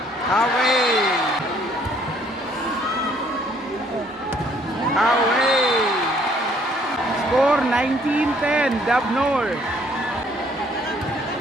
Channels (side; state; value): both; normal; correlation 0.63